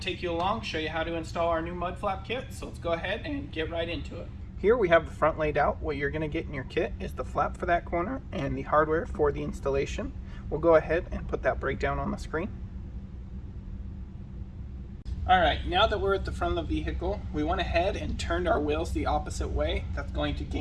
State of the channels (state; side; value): identical; both; correlation 1.00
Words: you along, show you how to install our new mud flap kit. So let's go ahead and get right into it. Here we have the front laid out. What you're going to get in your kit is the flap for that corner and the hardware for the installation. We'll go ahead and put that breakdown on the screen. Alright, now that we're at the front of the vehicle, we went ahead and turned our wheels the opposite way. That's going to